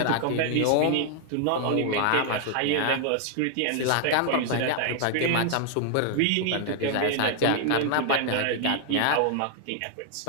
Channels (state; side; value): different; both; correlation 0.00